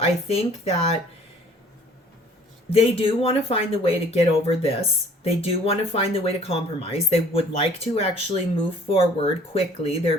think that they do want to find the way to get over this. They do want to find the way to compromise. They would like to actually move forward quickly. They're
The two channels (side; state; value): both; normal; correlation 0.54